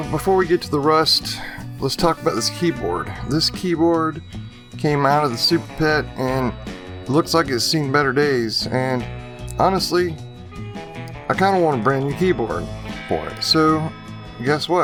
before we get to the rust, let's talk about this keyboard. This keyboard came out of the Super PET and it looks like it's seen better days. And honestly, I kind of want a brand new keyboard for it. So guess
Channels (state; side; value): identical; both; correlation 1.00